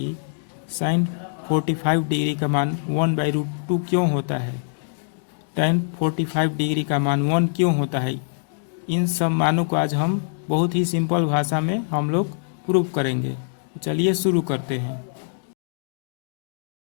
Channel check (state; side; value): silent; right; digital silence